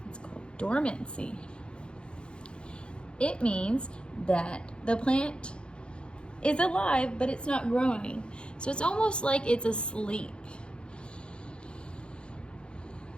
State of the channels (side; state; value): right; late; 0.054 ms